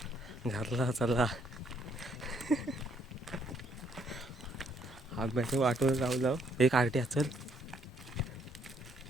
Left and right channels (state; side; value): normal; both; correlation 0.69